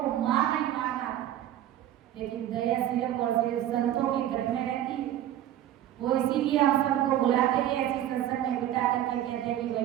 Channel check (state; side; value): quieter; left; 12.1 dB